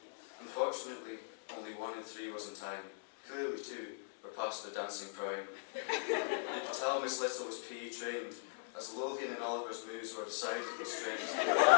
Unfortunately, only 1 in 3 was in time. Clearly, too, were past their dancing prime. Tell Miss Little was PE trained, as Lothian and Oliver's moves were decidedly strange.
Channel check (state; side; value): silent; right; digital silence